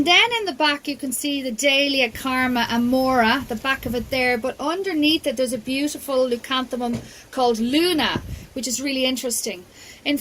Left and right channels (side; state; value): both; identical; correlation 1.00